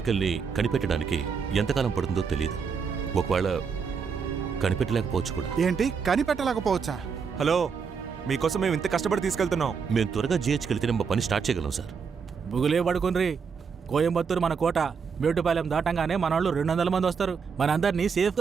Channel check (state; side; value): quieter; left; 6.0 dB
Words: కనిపెట్టడానికి ఎంతకాలం పడుతుందో తెలియదు. ఒకవేళ కనిపెట్టలేకపోవచ్చు కూడా. ఏంటి కనిపెట్టలేకపోవచ్చా? హలో, మీకోసం మేము ఇంత కష్టపడి తీసుకెళ్తున్నాం. మేము త్వరగా GHకి వెళ్తే మా పని స్టార్ట్ చేయగలం సార్. బుగులే పడుకుని కోయంబత్తూరు మన కోట. మేటుపాలెం దాటంగానే మన వాళ్ళు 200 మంది వస్తారు. మనందరినీ